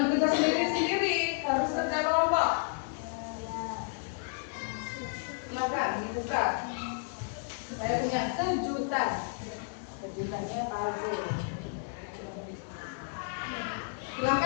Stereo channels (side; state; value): right; silent; digital silence